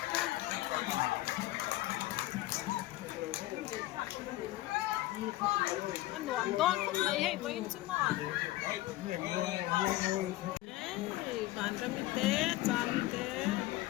anh đoán đoán không lấy hay với chứ mà bạn ra mi té cha mi té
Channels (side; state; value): right; quieter; 17.1 dB